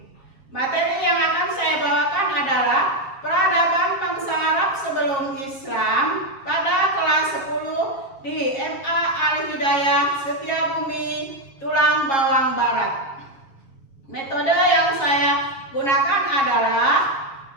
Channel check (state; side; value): late; right; 7.1 ms